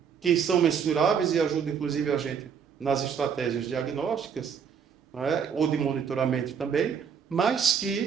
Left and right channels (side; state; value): left; quieter; 7.0 dB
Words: que são mensuráveis e ajudam inclusive a gente nas estratégias diagnósticas, né? Ou de monitoramento também, mas